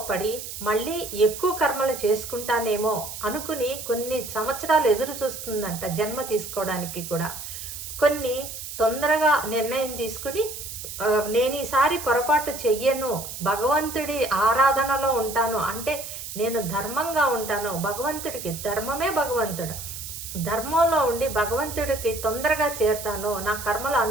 పడి మళ్ళీ ఎక్కువ కర్మలు చేసుకుంటానేమో అనుకుని కొన్ని సంవత్సరాలు ఎదురు చూస్తుందంట జన్మ తీసుకోవడానికి కూడా. కొన్ని తొందరగా నిర్ణయం తీసుకుని, నేను ఈసారి పొరపాటు చెయ్యను, భగవంతుడి ఆరాధనలో ఉంటాను, అంటే నేను ధర్మంగా ఉంటాను, భగవంతుడికి ధర్మమే భగవంతుడు, ధర్మంలో ఉండి భగవంతుడికి తొందరగా చేరుతాను, నా కర్మలు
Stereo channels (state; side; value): noise; right; hiss, 9 dB below the sound